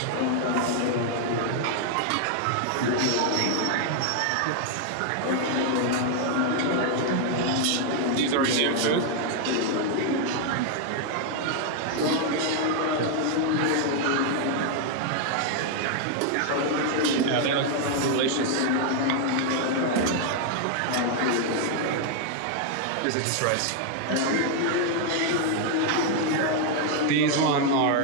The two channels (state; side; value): different; both; correlation 0.00